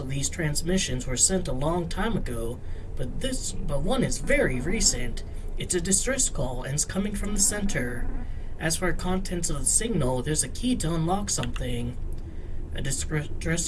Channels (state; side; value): identical; both; correlation 1.00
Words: these transmissions were sent a long time ago, but one is very recent. It's a distress call and it's coming from the center. As for contents of the signal, there's a key to unlock something. A